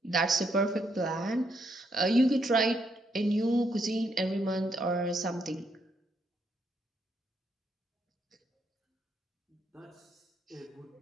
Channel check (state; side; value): normal; both; correlation 0.76